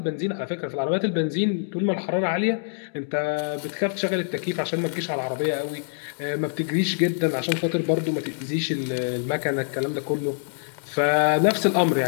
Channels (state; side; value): silent; right; digital silence